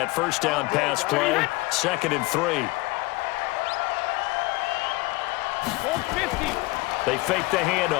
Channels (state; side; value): quieter; right; 21.8 dB